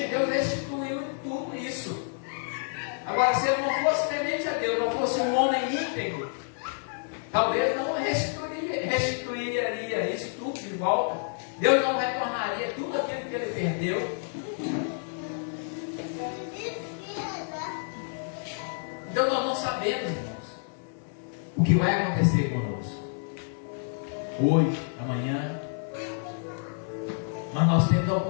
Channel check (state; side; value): silent; right; 56 dB below the other